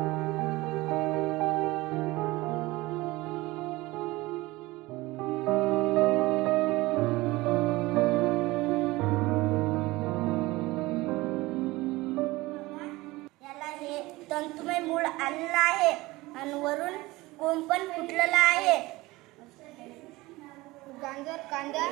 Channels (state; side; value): quieter; left; 20.4 dB